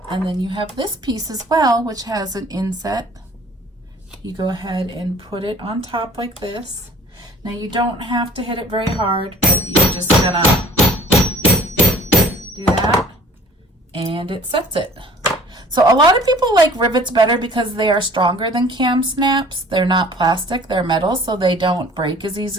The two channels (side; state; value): both; normal; correlation 0.50